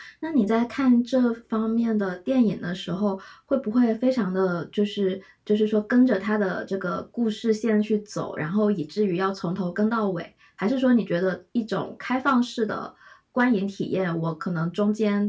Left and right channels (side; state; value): both; identical; correlation 1.00